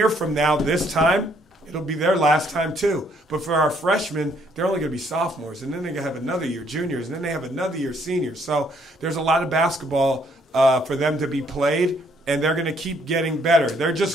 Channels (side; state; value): both; normal; correlation 0.67